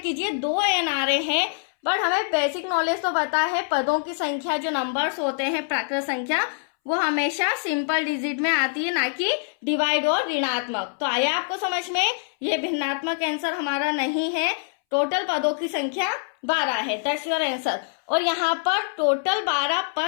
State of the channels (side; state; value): right; silent; 62 dB below the other